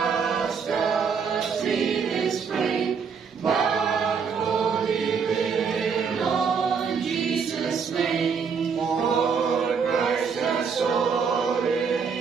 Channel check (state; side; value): quieter; left; 6.1 dB